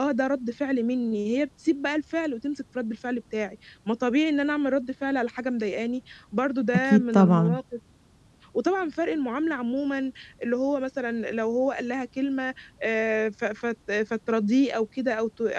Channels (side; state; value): both; identical; correlation 1.00